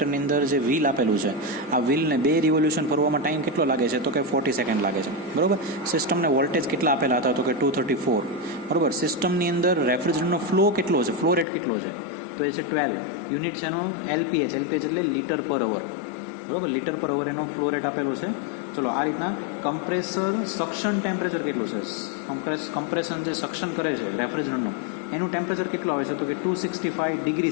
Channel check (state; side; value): drops out; right; at 11.5 s